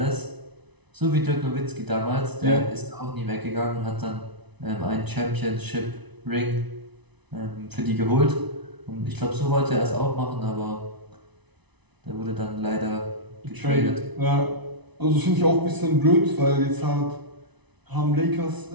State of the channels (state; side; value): late; left; 1.0 ms